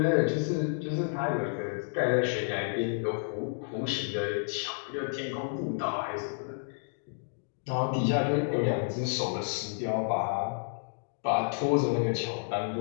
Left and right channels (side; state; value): right; silent; digital silence